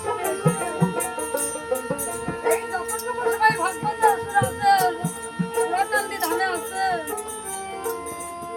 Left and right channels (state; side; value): identical; both; correlation 1.00